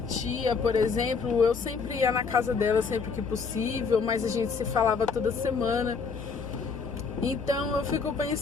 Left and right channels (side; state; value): right; quieter; 5.1 dB